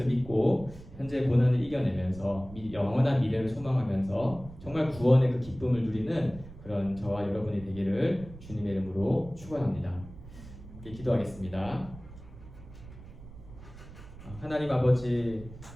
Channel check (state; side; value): noise; right; rumble, 16 dB below the sound